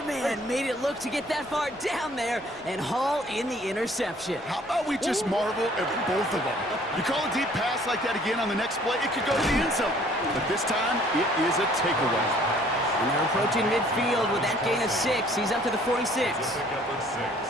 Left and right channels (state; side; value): normal; both; correlation 0.57